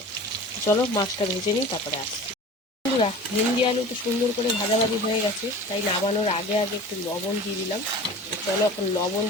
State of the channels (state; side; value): normal; both; correlation 0.39